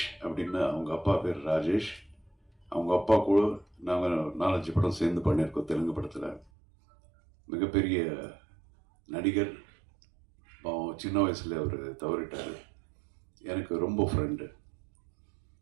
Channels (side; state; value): left; drops out; at 6.5 s